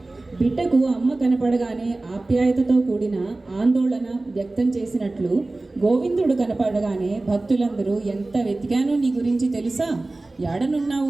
బిడ్డకు అమ్మ కనపడగానే ఆప్యాయతతో కూడిన ఆందోళన వ్యక్తం చేసినట్లు గోవిందుడు కనపడగానే భక్తులందరూ ఎంత వెతికానో నీ గురించి తెలుసా,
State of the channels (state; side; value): quieter; left; 3.0 dB